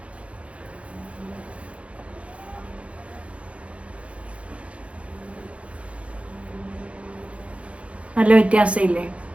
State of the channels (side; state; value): left; late; 0.062 ms